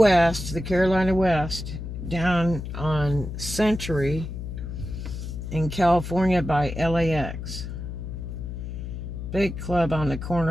the Carolina West, down on Century in California by LAX? Big club on the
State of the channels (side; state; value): left; noise; hum, 7 dB below the sound